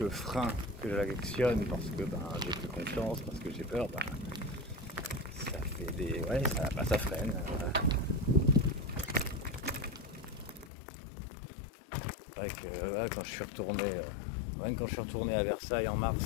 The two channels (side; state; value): right; drops out; at 10.7 s